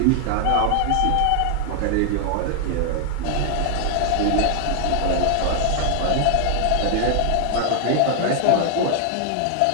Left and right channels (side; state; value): both; different; correlation 0.00